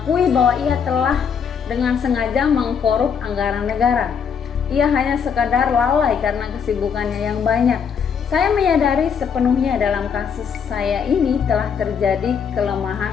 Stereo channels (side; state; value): right; quieter; 6.9 dB